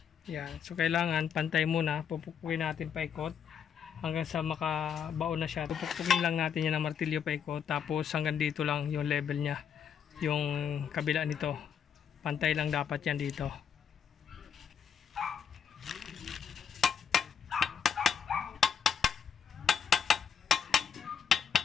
Yan. So kailangan pantay muna. Pupukpukin natin paikot hanggang sa makabaon na siya. Pupukpukin lang natin yan ng martilyo paikot. Tapos hanggang dito lang yung level niya. Yung kabila nito. Pantay lang dapat yan dito.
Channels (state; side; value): quieter; right; 7.7 dB